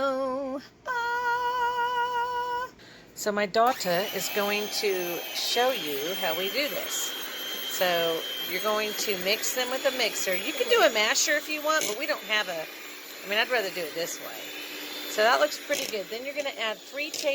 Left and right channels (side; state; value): both; identical; correlation 1.00